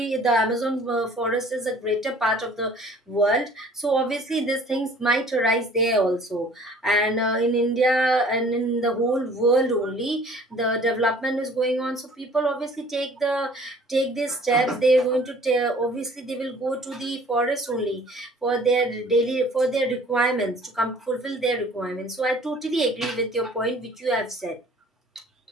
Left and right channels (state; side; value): normal; both; correlation 0.52